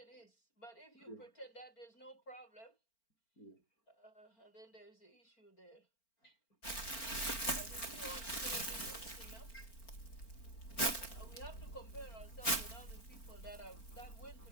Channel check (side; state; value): right; late; 4.4 ms